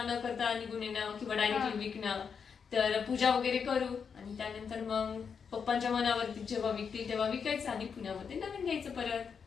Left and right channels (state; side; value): quieter; right; 6.4 dB